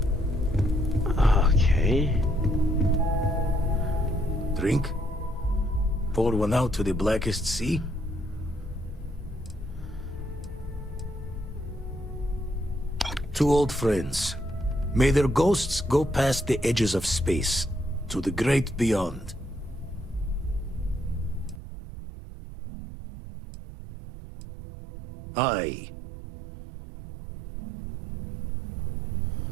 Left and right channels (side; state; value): left; drops out; at 21.6 s